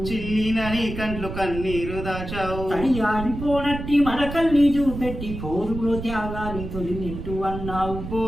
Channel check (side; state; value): right; noise; rumble, 8 dB below the sound